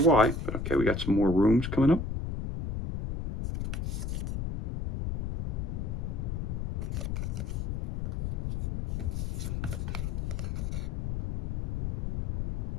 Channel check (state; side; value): noise; left; rumble, 2 dB below the sound